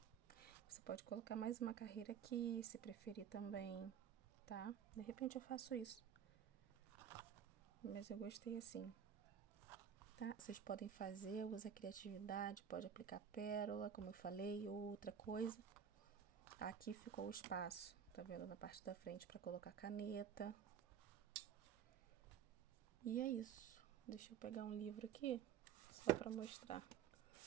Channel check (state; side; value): quieter; left; 8.3 dB